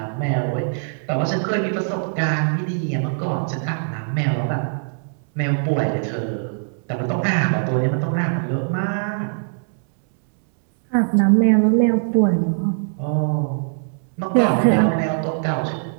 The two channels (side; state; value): left; silent; 65 dB below the other